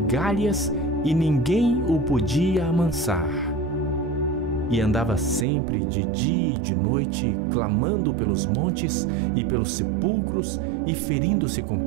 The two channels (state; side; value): drops out; left; at 5.5 s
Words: e ninguém o podia amansar. E andava sempre de dia e de noite, clamando pelos montes e pelos sepulcros, e ferindo-se com